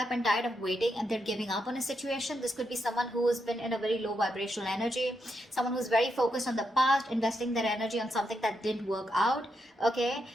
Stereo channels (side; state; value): both; normal; correlation 0.82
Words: and tired of waiting and they're giving up on a situation. This could be someone who's been in a very low vibrational energy, someone who's very focused on the past, investing their energy on something that didn't work out, okay?